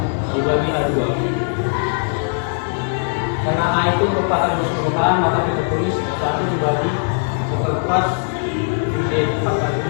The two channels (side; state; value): right; silent; 62 dB below the other